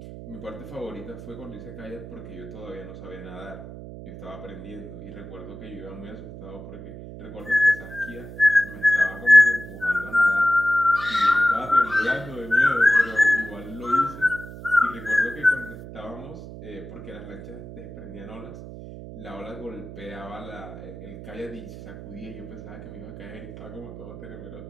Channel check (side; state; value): right; noise; hum, 13 dB below the sound